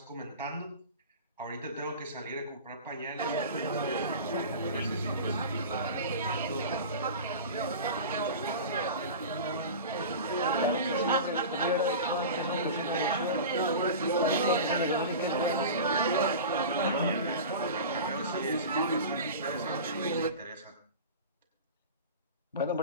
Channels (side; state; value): both; inverted; correlation -0.32